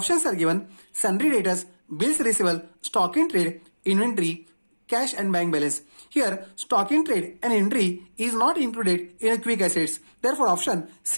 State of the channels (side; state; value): both; inverted; correlation -1.00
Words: are given sundry debtors, bills receivable, stock in trade, inventory, cash and bank balance. Here, stock in trade and inventory is not included in a quick assets. Therefore, option